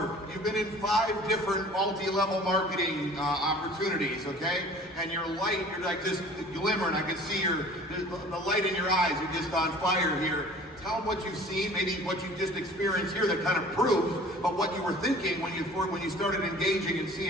you've been in 5 different multi-level marketing opportunities, okay? And you're like just glimmering. I can see the light in your eyes. You're just on fire here. Tell them what you've seen, maybe what you just experienced here that kind of proves, but what you were thinking when you started engaging and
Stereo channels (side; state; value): both; normal; correlation 0.47